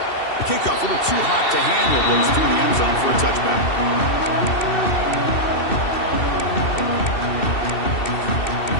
The kickoff a little too hot to handle, goes through the end zone for a touchback.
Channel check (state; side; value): late; right; 2.7 ms